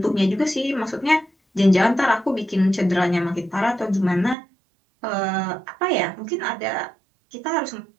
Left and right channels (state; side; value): drops out; left; at 4.4 s